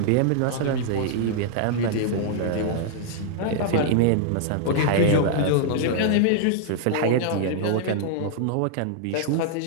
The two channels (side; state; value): both; different; correlation -0.01